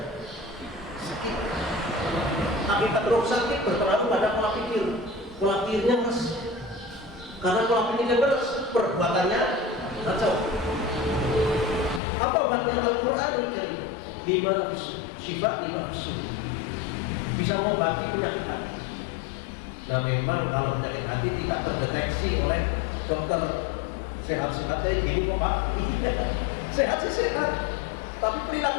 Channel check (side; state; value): right; drops out; at 12.0 s